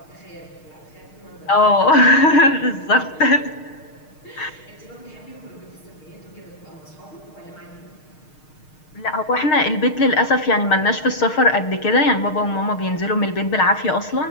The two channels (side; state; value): right; late; 6.5 ms